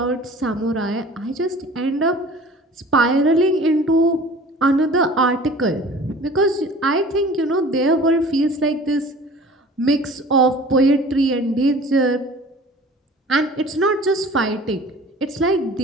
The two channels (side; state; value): both; normal; correlation 0.45